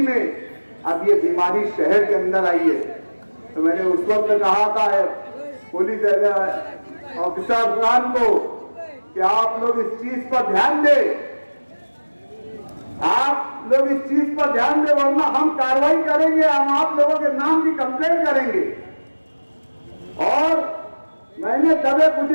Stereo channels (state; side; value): inverted; both; correlation -1.00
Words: में अब ये बीमारी शहर के अंदर आई है, तो मैंने उस वक्त कहा था पुलिस ऑफिसर अफगान को कि आप लोग इस चीज पर ध्यान दें, आप लोग इस चीज पर ध्यान दें, वरना हम कार्रवाई करेंगे, हम आप लोगों के नाम की कंप्लेंट करेंगे। और मैंने दबे कुछ